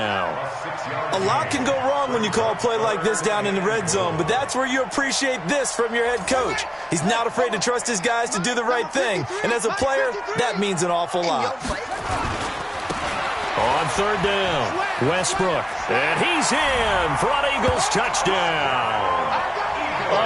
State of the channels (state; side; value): identical; both; correlation 1.00